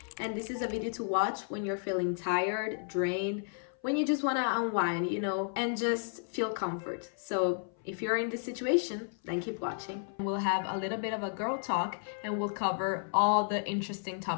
and this is a video to watch when you're feeling tired, drained, when you just want to unwind, and just feel comfort. So if you're in this situation, then keep watching. We'll have a little bit of a girl talk and we'll cover all the interesting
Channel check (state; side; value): silent; right; 56 dB below the other